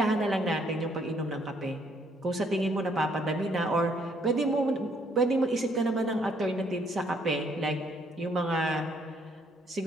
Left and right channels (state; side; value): normal; both; correlation 0.67